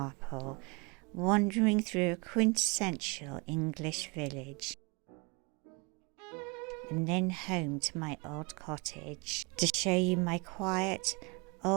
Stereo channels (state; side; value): quieter; left; 29.8 dB